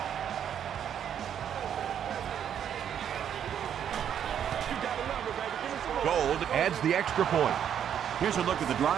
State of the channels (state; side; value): quieter; left; 9.1 dB